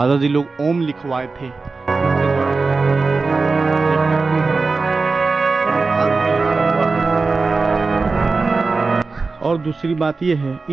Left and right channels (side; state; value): left; quieter; 4.0 dB